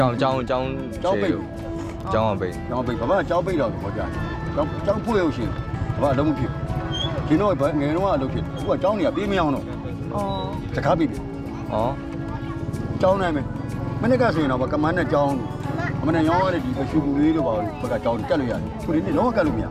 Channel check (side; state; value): both; identical; correlation 1.00